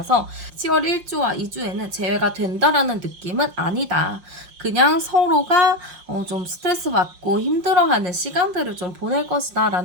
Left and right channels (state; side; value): late; left; 5.7 ms